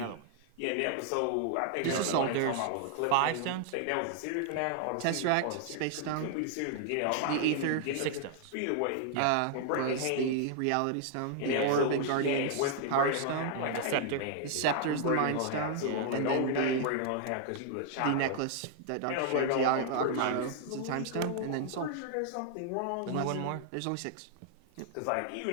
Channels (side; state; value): both; different; correlation 0.00